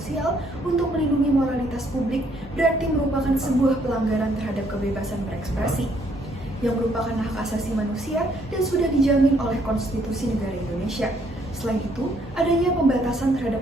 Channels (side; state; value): both; normal; correlation 0.68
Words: untuk melindungi moralitas publik berarti merupakan sebuah pelanggaran terhadap kebebasan berekspresi, yang merupakan hak asasi manusia dan sudah dijamin oleh konstitusi negara Indonesia. Selain itu, adanya pembatasan